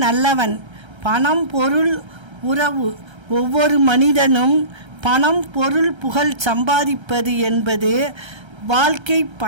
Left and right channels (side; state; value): left; late; 1.3 ms